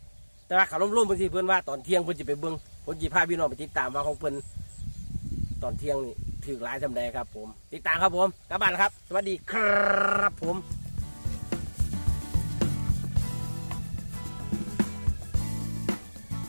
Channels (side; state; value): both; inverted; correlation -1.00